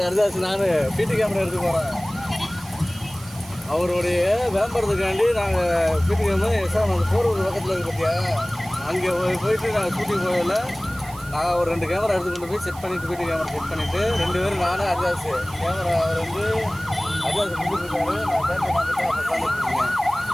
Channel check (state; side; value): noise; right; hiss, 19 dB below the sound